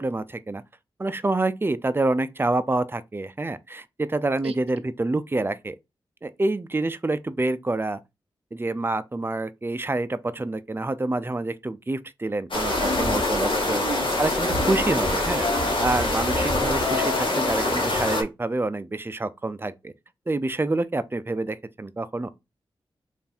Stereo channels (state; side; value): normal; both; correlation 0.70